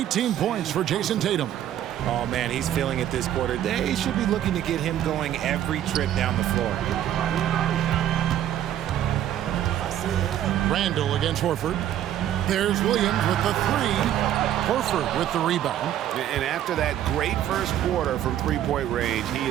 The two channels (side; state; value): left; quieter; 11.4 dB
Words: points for Jason Tatum. Oh, man, he's feeling it this quarter. They should be looking to get him going every trip down the floor. Randall against Horford. There's Williams with the 3. Horford with the rebound. And after that great first quarter from three-point range, he